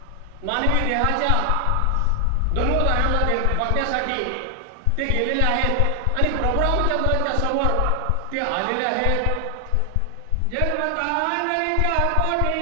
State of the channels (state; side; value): different; both; correlation 0.00